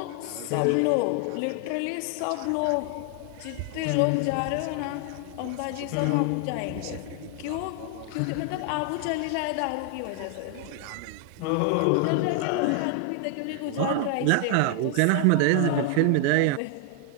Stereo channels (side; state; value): both; different; correlation 0.00